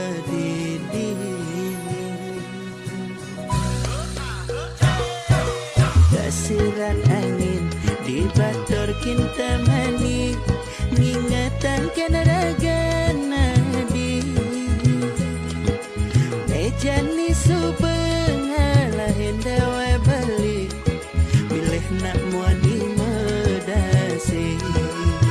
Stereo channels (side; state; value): both; identical; correlation 1.00